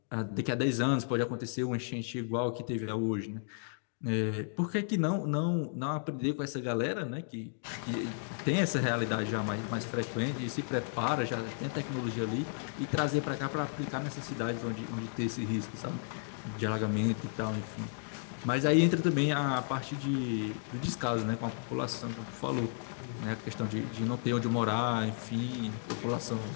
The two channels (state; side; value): silent; right; digital silence